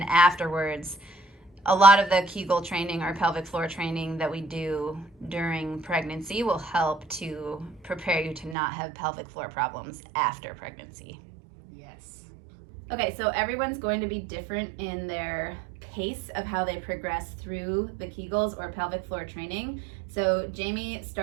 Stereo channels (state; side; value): drops out; left; at 8.6 s